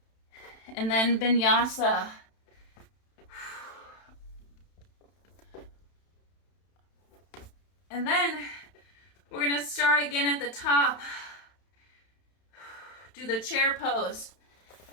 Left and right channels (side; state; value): right; late; 31 ms